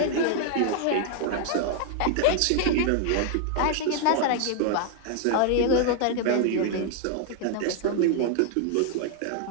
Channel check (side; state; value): both; different; correlation 0.00